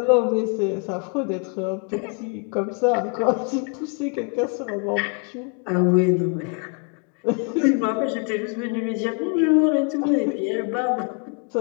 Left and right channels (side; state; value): right; quieter; 37.5 dB